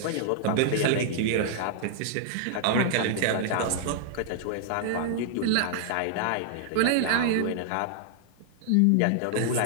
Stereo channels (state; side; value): different; both; correlation -0.01